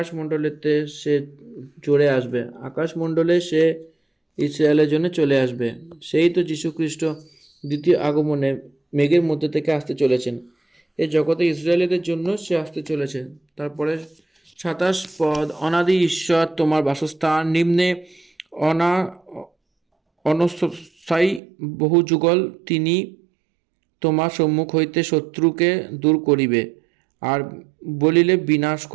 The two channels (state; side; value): drops out; left; at 21.4 s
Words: সে চড়ে আসবে, আকাশমণ্ডলে সে ইসরায়েলের জন্য চলে আসবে। সেই তো যীশুখ্রিস্ট দ্বিতীয় আগমনে মেঘের মধ্যে থেকে আসতে চলেছেন। এই জগতে ইসরায়েলিদের জন্য সে আসতে চলেছেন। তারপরে 27 পদ, অনাদি ঈশ্বর তোমার বাসস্থান, নিম্নে অনস্থায়ী বহু যুগল তিনি তোমার সম্মুখ হইতে শত্রুকে দূর করিবে আর বলিলে বিনাশ